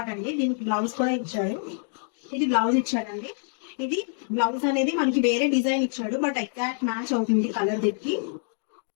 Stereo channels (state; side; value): silent; right; 61 dB below the other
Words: అండి. దీనికి బ్లౌజ్ కూడా ఇచ్చాడు. ఇది బ్లౌజ్ ఇచ్చాడండి. ఇది బ్లౌజ్ అనేది మనకి వేరే డిజైన్ ఇచ్చాడు, బట్ ఎగ్జాక్ట్ మ్యాచ్ అవుతుంది కలర్ దీనికి.